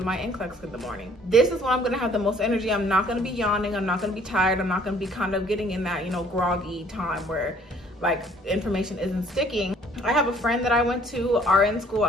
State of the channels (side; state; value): both; normal; correlation 0.58